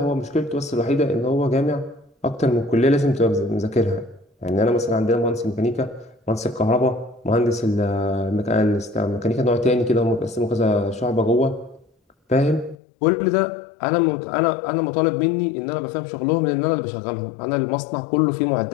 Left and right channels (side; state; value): right; drops out; at 12.8 s